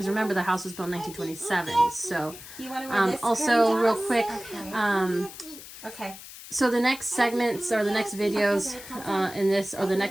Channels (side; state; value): left; noise; hiss, 15 dB below the sound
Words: remember the house was built in 1927. So you want to wear this also real quick, okay. So the next segments or the next videos in this, or the